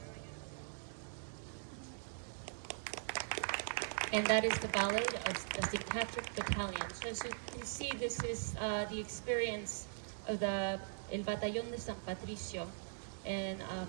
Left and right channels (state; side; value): silent; left; digital silence